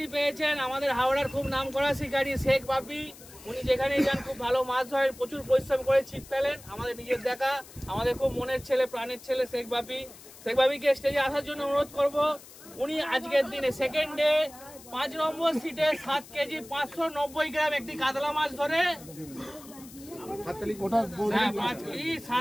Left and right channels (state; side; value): noise; left; hiss, 19 dB below the sound